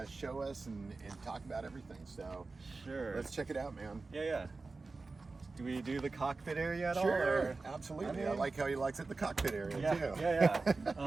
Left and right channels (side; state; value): left; quieter; 3.8 dB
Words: show us and talk about everything. So sure, let's check it out, man. Yeah. Do we do the cockpit area at all? Sure, absolutely. I like how he likes it, the cockpit area too.